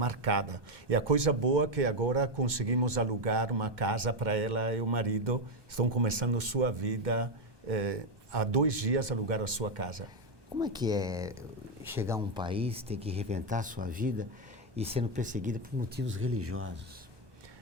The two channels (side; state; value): left; late; 1.2 ms